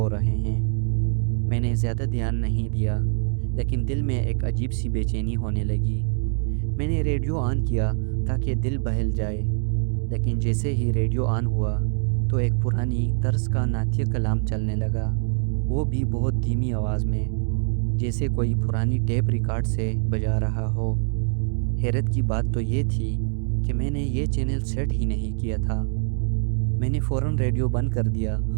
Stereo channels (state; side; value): silent; left; 62 dB below the other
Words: रहे हैं। मैंने ज़्यादा ध्यान नहीं दिया, लेकिन दिल में एक अजीब सी बेचैनी होने लगी। मैंने रेडियो ऑन किया ताकि दिल बहल जाए, लेकिन जैसे ही रेडियो ऑन हुआ तो एक पुरानी तर्ज का नाट्य कलाम चलने लगा, वो भी बहुत धीमी आवाज़ में, जैसे कोई पुरानी टेप रिकॉर्ड से बजा रहा हो। हैरत की बात तो ये थी कि मैंने ये चैनल सेट ही नहीं किया था। मैंने फ़ौरन रेडियो बंद कर दिया